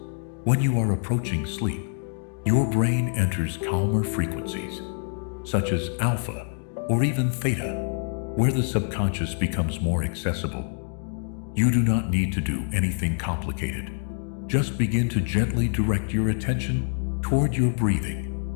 when you are approaching sleep, your brain enters calmer frequencies, such as alpha or even theta, where the subconscious becomes more accessible. You do not need to do anything complicated. Just begin to gently direct your attention toward your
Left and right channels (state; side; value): silent; right; 56 dB below the other